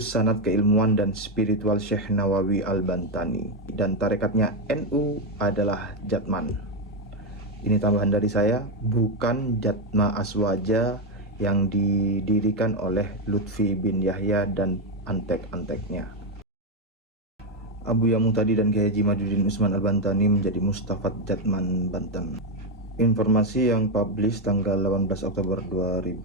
sanad keilmuan dan spiritual Syekh Nawawi Al-Bantani, dan tarekatnya NU adalah Jatman. Ini tambahan dari saya, bukan Jatma Aswaja yang didirikan oleh Lutfi bin Yahya dan antek-anteknya. Abuya Muhtadi dan Kiai Haji Imaduddin Usman Al-Bantani menjadi Mustafat Jatman Banten. Informasi yang publish tanggal 18 Oktober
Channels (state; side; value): normal; both; correlation 0.06